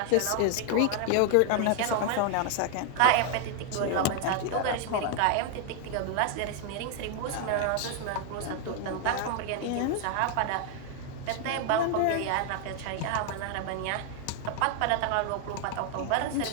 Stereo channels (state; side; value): different; both; correlation 0.00